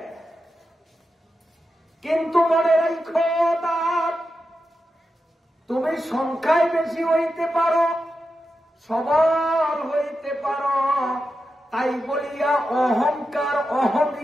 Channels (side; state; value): both; normal; correlation 0.89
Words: কিন্তু মনে রাখো, দাঁত তুমি সংখ্যায় বেশি হইতে পারো, সবল হইতে পারো, তাই বলিয়া অহংকার,